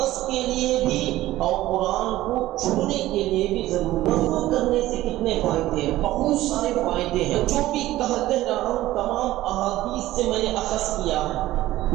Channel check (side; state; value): left; quieter; 15.8 dB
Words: کے لیے بھی اور قرآن کو چھونے کے لیے بھی ضروری ہے۔ وضو کرنے سے کتنے فائدے ہیں؟ بہت سارے فائدے ہیں، جو بھی کہہ رہا ہوں تمام احادیث سے میں نے اخذ کیا ہے۔